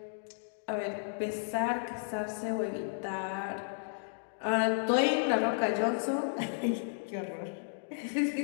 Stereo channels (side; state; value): right; silent; digital silence